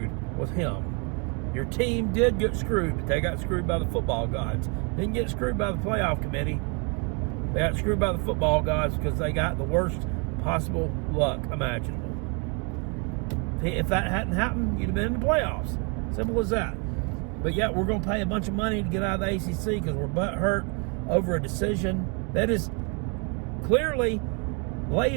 was him. Your team did get screwed, but they got screwed by the football gods. Didn't get screwed by the playoff committee. They got screwed by the football gods because they got the worst possible luck imaginable. If that hadn't happened, you'd have been in the playoffs. Simple as that. But yet we're going to pay a bunch of money to get out of the ACC because we're butthurt over a decision that is clearly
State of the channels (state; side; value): quieter; left; 34.6 dB